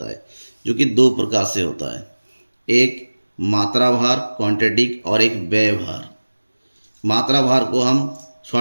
है, जो कि 2 प्रकार से होता है, एक मात्रा भार क्वांटिटी और एक व्यय भार। मात्रा भार को हम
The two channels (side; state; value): both; inverted; correlation -1.00